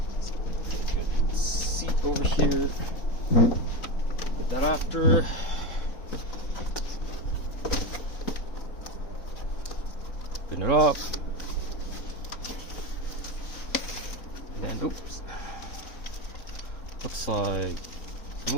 Get a good seat over here. Put that after. Open it up. And then, oops. Looks like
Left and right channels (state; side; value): late; right; 3.9 ms